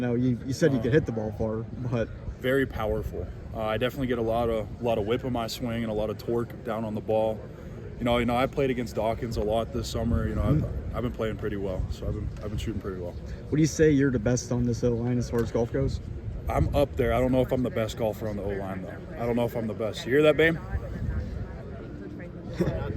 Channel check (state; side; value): identical; both; correlation 1.00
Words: you said you could hit the ball far, but very powerful. I definitely get a lot of whip in my swing and a lot of torque down on the ball. I played against Dawkins a lot this summer. I've been playing pretty well, so I've been shooting pretty well. Would you say you're the best on this O-line as far as golf goes? I'm up there. I don't know if I'm the best golfer on the O-line though. I don't know if I'm the best. You hear that, babe?